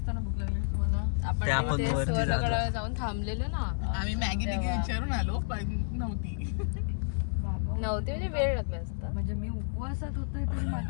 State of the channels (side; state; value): right; silent; digital silence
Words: भूक लागलेली तुम्हाला? आपण वरती जाऊन थांबलेलो ना आम्ही मॅगी विचारून आलो पण नव्हती म्हणजे वेळ लागला असता. म्हणजे मी उपवासात होते तरी